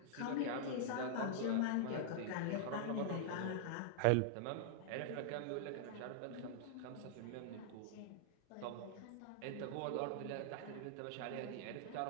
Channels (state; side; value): different; both; correlation -0.01